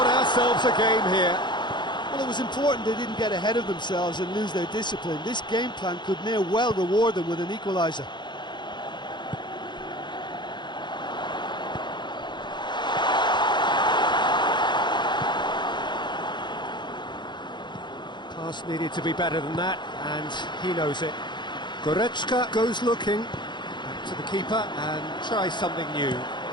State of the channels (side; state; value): right; late; 0.22 ms